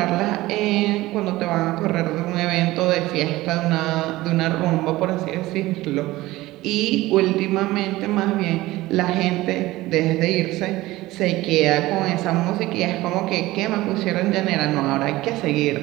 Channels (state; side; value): quieter; left; 18.1 dB